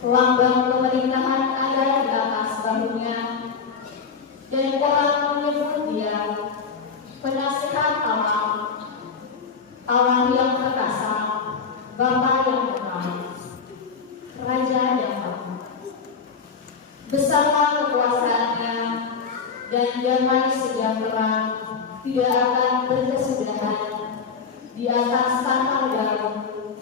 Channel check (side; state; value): right; quieter; 5.7 dB